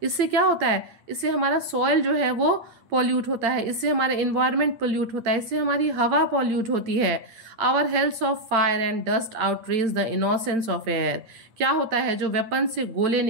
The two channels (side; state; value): left; late; 8.9 ms